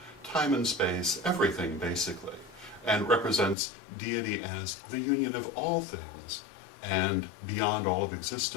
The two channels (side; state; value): right; drops out; at 3.6 s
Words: time and space, everything basically, and represents deity as the union of all things, and beyond all of